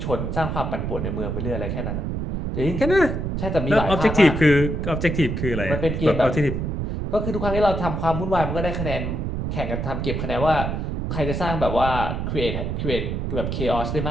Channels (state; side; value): noise; right; rumble, 2 dB below the sound